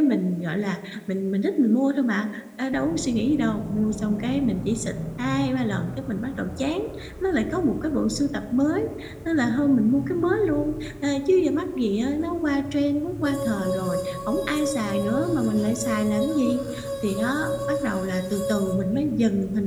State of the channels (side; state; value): both; identical; correlation 1.00